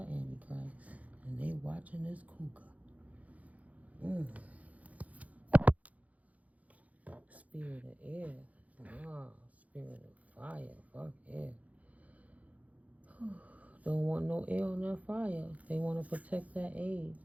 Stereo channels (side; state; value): left; late; 0.070 ms